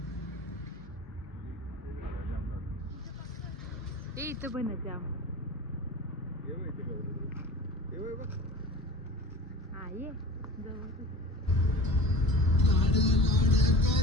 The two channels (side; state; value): both; normal; correlation 0.38